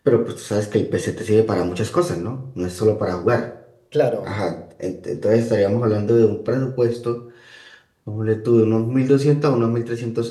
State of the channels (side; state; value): both; identical; correlation 1.00